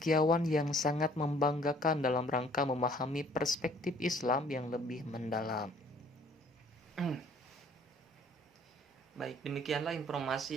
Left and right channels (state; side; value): normal; both; correlation 0.57